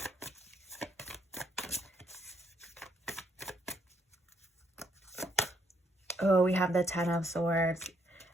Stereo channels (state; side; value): normal; both; correlation 0.73